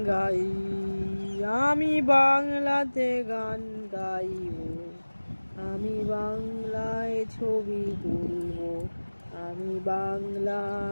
গাই, আমি বাংলাতে গান গাইব, আমি বাংলায় ছবি তুলব, আমি বাংলা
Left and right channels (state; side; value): inverted; both; correlation -1.00